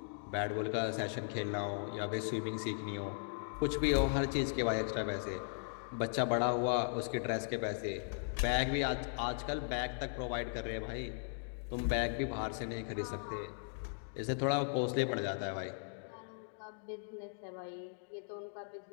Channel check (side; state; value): right; silent; digital silence